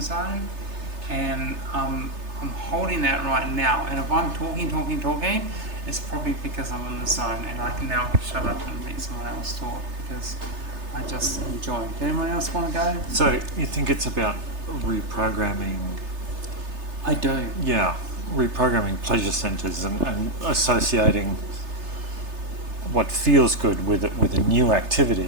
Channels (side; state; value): left; late; 3.3 ms